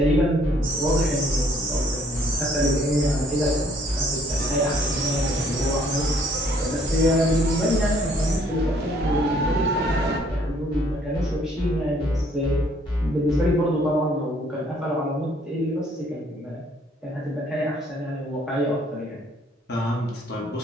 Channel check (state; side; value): normal; both; correlation 0.62